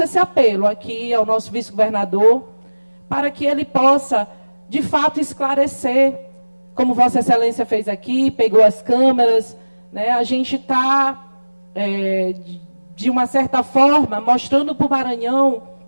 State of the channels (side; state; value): both; inverted; correlation -1.00